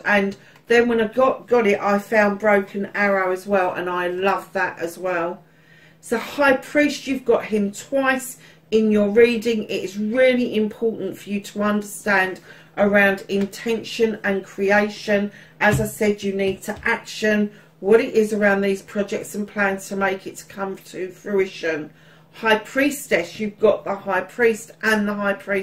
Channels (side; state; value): both; identical; correlation 1.00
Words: and then when I got it, I found Broken Arrow as well, and I love that as well. So High Priest, you've got him twice in your reading. It is really important for you to understand around intention and creation. As I said, you need to action what it is around these projects and plans to make it to come to fruition. High Priestess, you've got the High Priest and the High